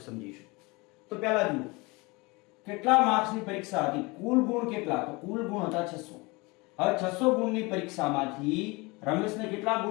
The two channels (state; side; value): quieter; right; 25.3 dB